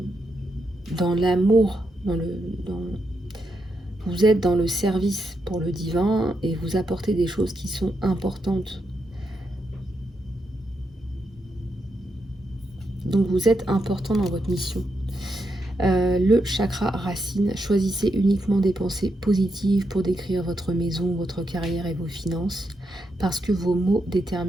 l'amour, vous êtes dans le service pour le divin et vous apportez des choses qui sont importantes. Donc vous êtes important dans votre mission. Le chakra racine, choisissez uniquement des pensées positives pour décrire votre maison, votre carrière et vos finances, parce que vos mots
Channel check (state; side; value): normal; both; correlation 0.83